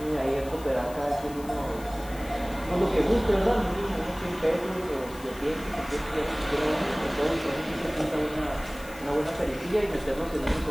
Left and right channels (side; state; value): left; noise; hiss, 19 dB below the sound